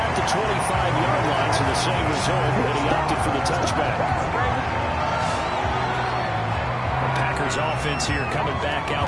the 25-yard line, so the same result, but he opted for the touchback. The Packers offense here coming back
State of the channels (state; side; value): identical; both; correlation 1.00